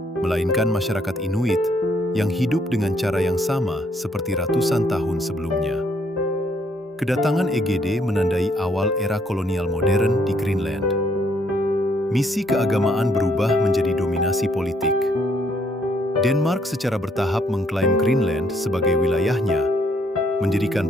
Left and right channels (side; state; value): both; normal; correlation 0.68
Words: melainkan masyarakat Inuit yang hidup dengan cara yang sama seperti ratusan tahun sebelumnya. Kedatangan Egede menandai awal era kolonial modern di Greenland. Misi keagamaan berubah menjadi dominasi politik. Denmark secara bertahap mengklaim Greenland sebagai wilayahnya,